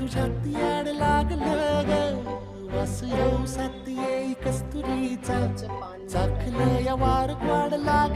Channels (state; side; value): identical; both; correlation 1.00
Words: याड लागलं ग. वास येऊ साथ येई कस्तुरीचा, चाखलं या वार वाढ